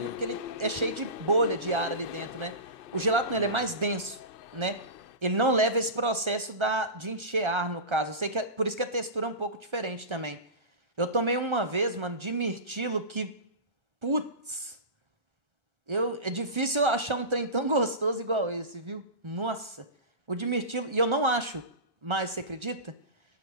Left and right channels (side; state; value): left; late; 1.3 ms